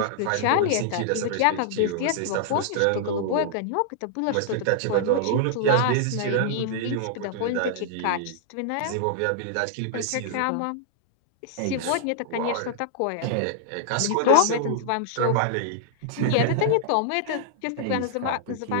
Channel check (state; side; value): different; both; correlation -0.01